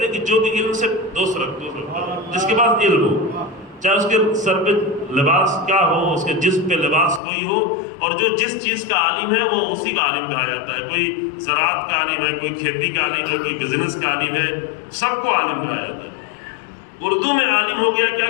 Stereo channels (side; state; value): right; drops out; at 7.2 s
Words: ہیں کہ جو بھی علم سے دوست رکھتا ہے، جس کے پاس علم ہو، چاہے اس کے سر پہ لباس کیا ہو، اس کے جسم پہ لباس کوئی ہو، اور جو جس چیز کا عالم ہے وہ اسی کا عالم کہا جاتا ہے۔ کوئی زراعت کا عالم ہے، کوئی کھیتی کا عالم ہے، کوئی بزنس کا عالم ہے، سب کو عالم کہا جاتا ہے۔ اردو میں عالم ہو گیا کیا